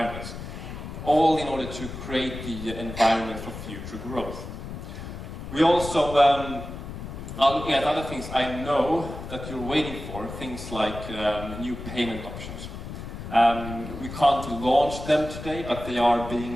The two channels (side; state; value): left; noise; rumble, 9 dB below the sound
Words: All in order to create the environment for future growth. We also are looking at other things. I know that you're waiting for, things like new payment options. We can't launch them today, but they are